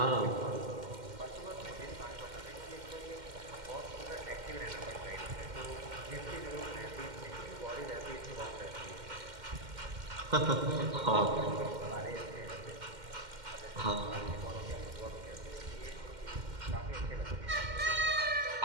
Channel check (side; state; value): left; late; 2.1 ms